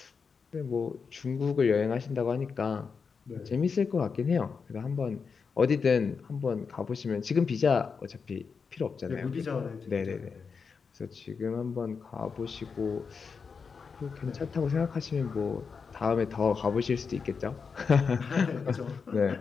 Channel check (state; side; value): quieter; right; 5.5 dB